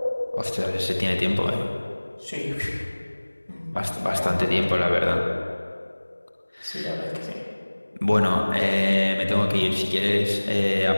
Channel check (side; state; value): both; inverted; correlation -1.00